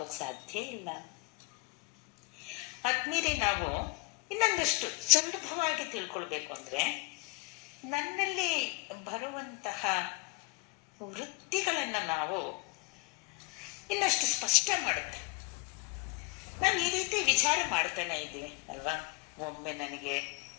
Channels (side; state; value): right; quieter; 27.6 dB